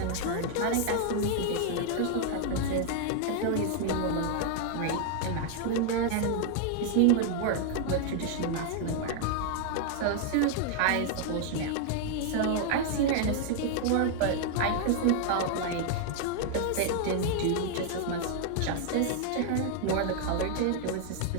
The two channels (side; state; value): both; different; correlation 0.00